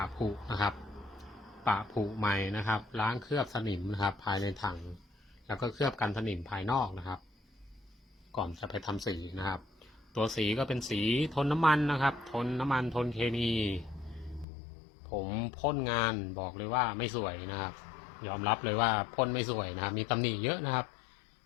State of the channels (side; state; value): right; drops out; at 14.5 s